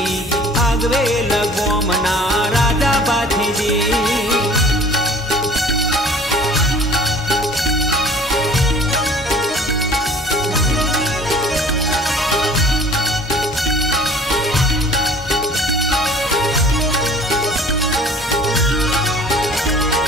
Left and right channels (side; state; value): both; normal; correlation 0.49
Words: भागवेल गोमना राजा बाथीजी